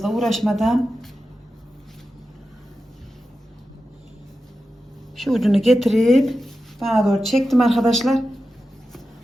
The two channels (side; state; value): both; normal; correlation 0.91